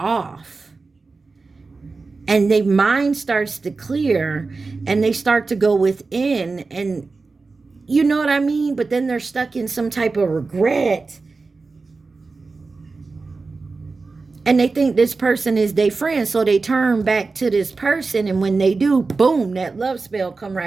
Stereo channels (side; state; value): left; quieter; 4.0 dB